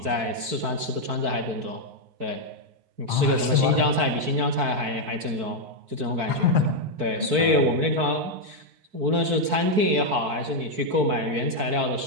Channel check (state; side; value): late; left; 4.5 ms